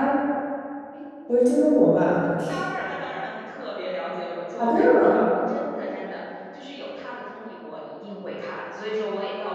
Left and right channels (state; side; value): identical; both; correlation 1.00